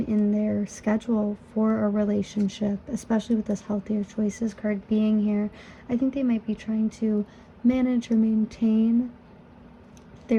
in their schedule for a relationship, especially with this healthier choices card being here. I think they might be trying to manage or maintain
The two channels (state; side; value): identical; both; correlation 1.00